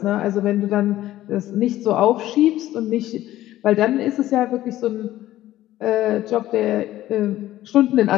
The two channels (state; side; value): quieter; right; 14.5 dB